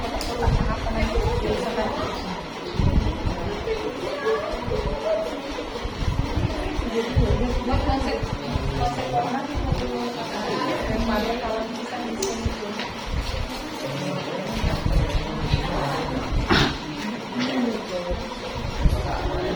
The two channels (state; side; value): identical; both; correlation 1.00